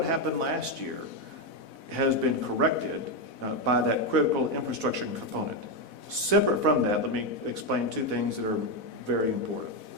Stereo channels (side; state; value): right; late; 4.1 ms